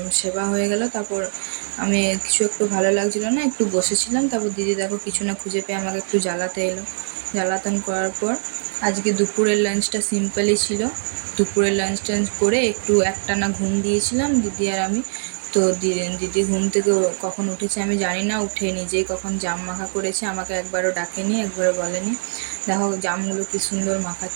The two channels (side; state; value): left; silent; 60 dB below the other